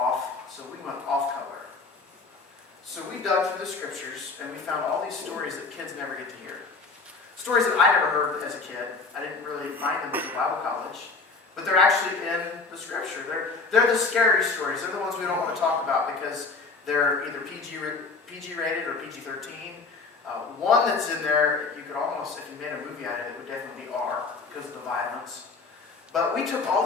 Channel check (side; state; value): right; quieter; 4.2 dB